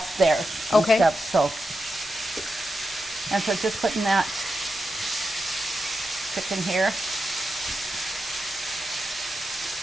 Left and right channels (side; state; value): both; normal; correlation 0.88